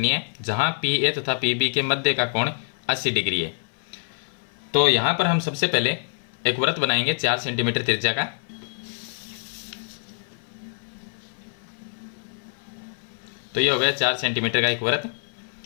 है, जहाँ PA तथा PB के मध्य का कोण 80 डिग्री है। तो यहाँ पर हम सबसे पहले एक वृत्त बनाएंगे 4 सेंटीमीटर त्रिज्या का। तो ये हो गया 4 सेंटीमीटर का एक वृत्त।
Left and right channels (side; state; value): right; silent; 62 dB below the other